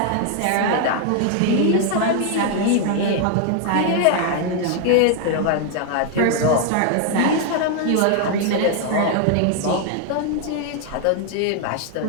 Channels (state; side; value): different; both; correlation 0.00